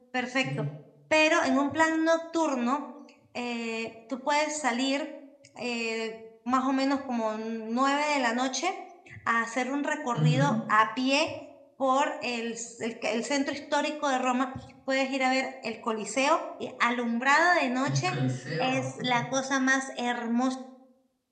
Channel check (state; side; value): identical; both; correlation 1.00